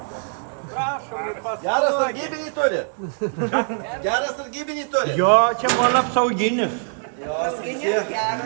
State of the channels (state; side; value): silent; left; digital silence